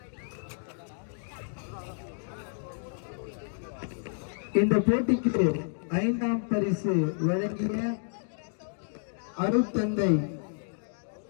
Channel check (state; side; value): silent; right; digital silence